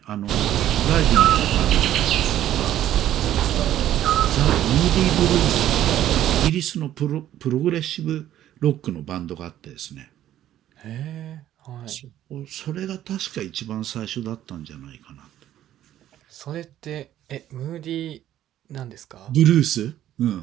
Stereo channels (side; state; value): left; quieter; 12.3 dB